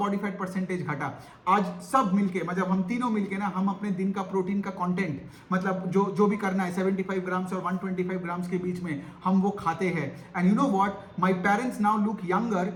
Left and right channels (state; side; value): identical; both; correlation 1.00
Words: फैट परसेंटेज घटा, आज सब मिलके मतलब हम तीनों मिलके ना, हम अपने दिन का प्रोटीन का कंटेंट मतलब जो भी करना है 75 ग्राम्स और 125 ग्राम्स के बीच में हम वो खाते हैं। And you know what, my parents now look younger